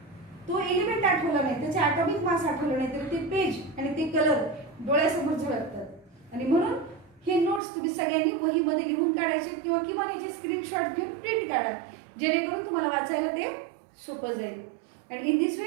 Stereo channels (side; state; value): left; drops out; at 7.6 s